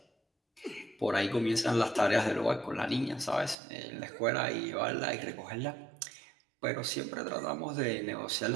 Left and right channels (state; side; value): drops out; left; at 3.6 s